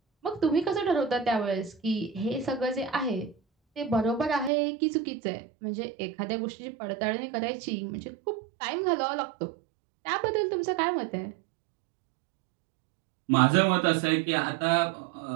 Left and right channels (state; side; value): drops out; left; at 4.5 s